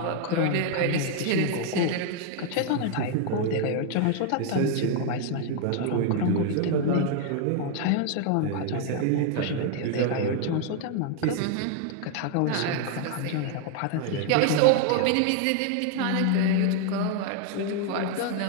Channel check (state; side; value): different; both; correlation 0.00